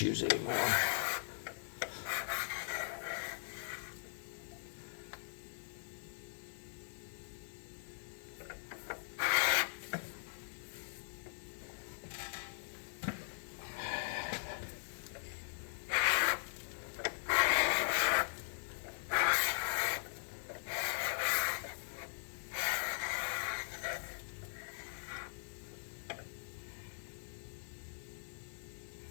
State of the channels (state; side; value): silent; right; 51 dB below the other